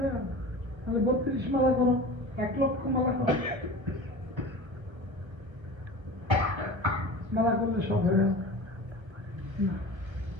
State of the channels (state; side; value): late; left; 1.3 ms